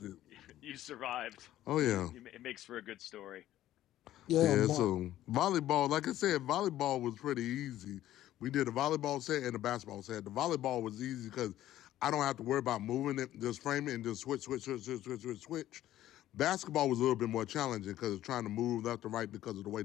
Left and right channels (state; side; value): quieter; right; 13.5 dB